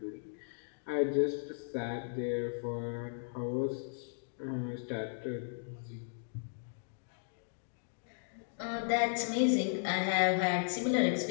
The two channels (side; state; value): right; silent; digital silence